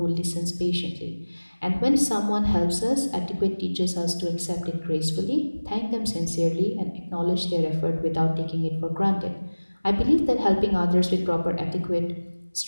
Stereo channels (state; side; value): inverted; both; correlation -1.00